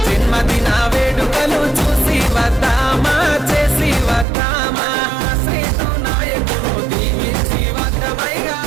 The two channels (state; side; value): drops out; left; at 4.2 s